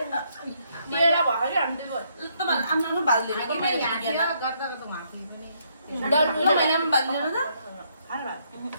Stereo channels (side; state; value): both; inverted; correlation -0.72